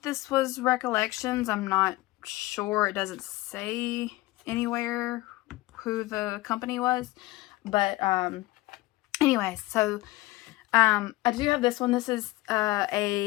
this was Recollections. I'm not sure. It doesn't say anywhere who the company was. But, anyways, so, I do have this one. This is,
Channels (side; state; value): right; quieter; 19.4 dB